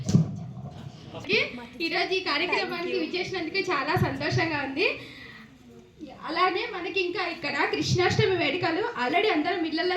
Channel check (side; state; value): both; identical; correlation 1.00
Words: ఈరోజు ఈ కార్యక్రమానికి విచ్చేసినందుకు చాలా సంతోషంగా ఉంది. అలానే మనకి ఇంకా ఇక్కడ కృష్ణాష్టమి వేడుకలు ఆల్రెడీ అందరం ఇళ్లలో